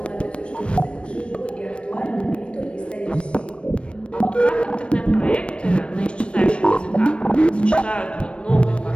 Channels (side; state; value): right; late; 0.059 ms